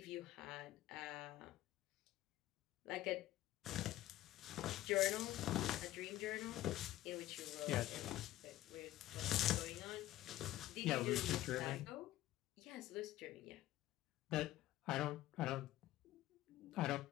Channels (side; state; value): right; quieter; 14.7 dB